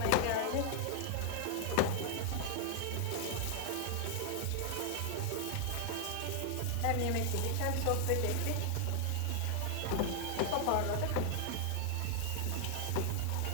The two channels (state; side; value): different; both; correlation 0.00